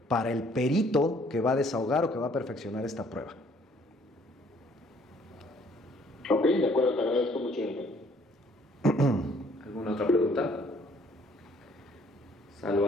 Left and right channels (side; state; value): both; normal; correlation 0.61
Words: para el perito que va a desahogar o que va a perfeccionar esta prueba. Ok, de acuerdo, te agradezco mucho. ¿Alguna otra pregunta?